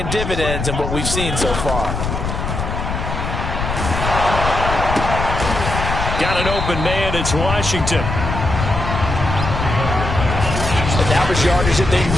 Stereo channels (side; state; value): left; noise; rumble, 3 dB below the sound